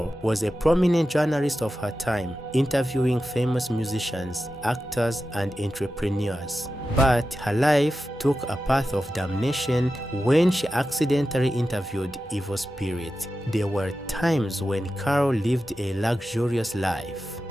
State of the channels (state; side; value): normal; both; correlation 0.92